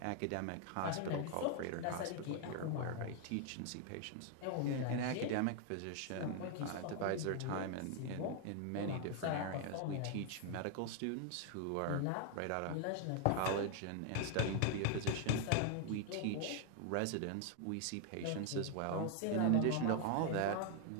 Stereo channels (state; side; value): different; both; correlation 0.00